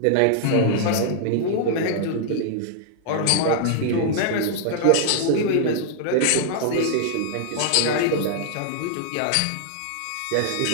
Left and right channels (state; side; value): different; both; correlation -0.01